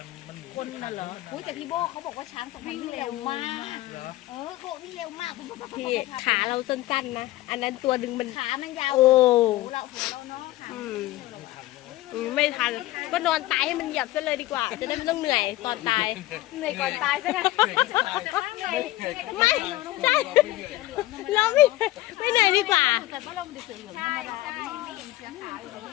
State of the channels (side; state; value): right; quieter; 17.0 dB